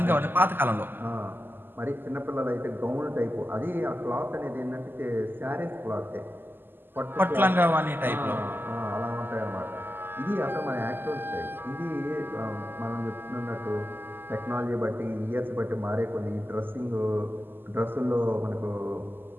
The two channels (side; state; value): left; late; 0.096 ms